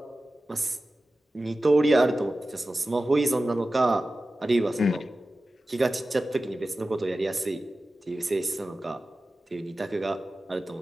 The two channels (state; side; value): normal; both; correlation 0.95